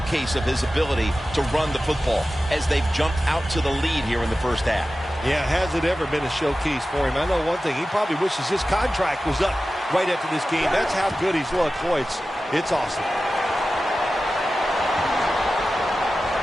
of his ability to run the football as they've jumped out to the lead here in the first half. Yeah, has it ever been a showcase for him? I know one thing, he probably wishes his contract was up right after this game. That's how good he's looked. Boy, it's awesome.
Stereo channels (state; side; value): normal; both; correlation 0.94